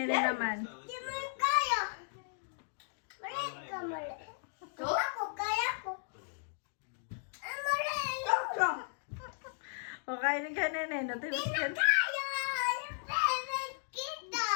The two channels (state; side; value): silent; right; digital silence